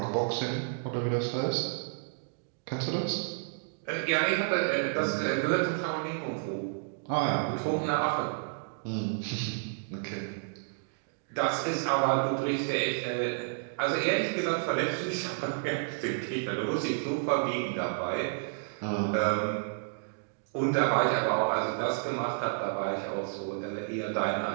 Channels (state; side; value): silent; left; digital silence